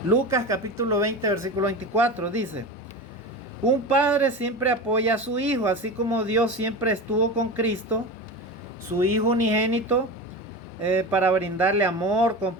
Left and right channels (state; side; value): normal; both; correlation 0.26